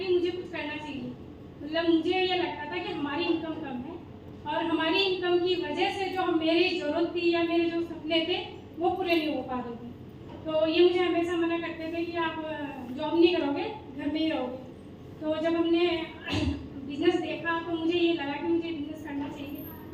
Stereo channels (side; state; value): both; identical; correlation 1.00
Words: मुझे कुछ करना चाहिए। मतलब मुझे ये लगता था कि हमारी इनकम कम है और हमारी इनकम की वजह से जो मेरी ज़रूरत थी या मेरे जो सपने थे वो पूरे नहीं हो पा रहे थे। तो ये मुझे हमेशा मना करते थे कि आप जॉब नहीं करोगे, घर में ही रहोगे। तो जब हमने बिजनेस देखा तो मुझे ये लगा कि मुझे बिजनेस करना चाहिए,